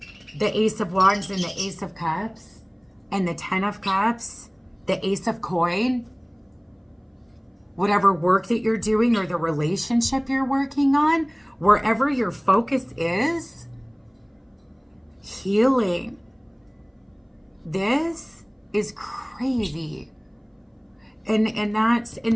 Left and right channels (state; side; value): identical; both; correlation 1.00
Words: The Ace of Wands and the Ace of Cups and the 10 of Cups, the Ace of Coin, whatever work that you're doing or the relationship you're working on, wherever your focus is, healing. This is crazy. And